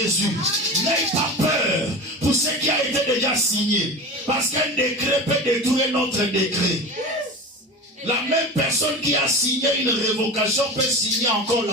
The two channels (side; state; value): both; normal; correlation 0.30